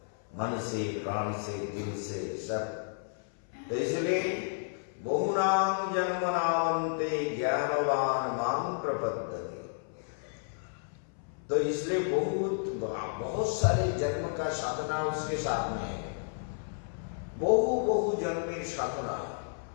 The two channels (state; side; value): silent; right; 57 dB below the other